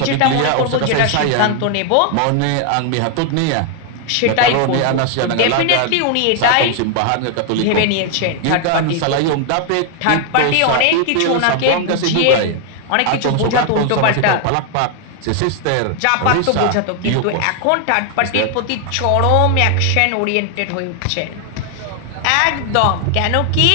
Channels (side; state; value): both; different; correlation 0.00